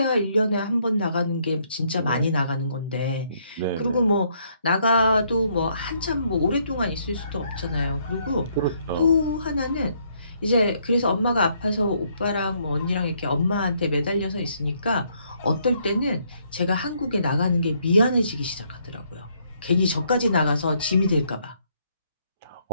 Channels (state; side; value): inverted; both; correlation -0.71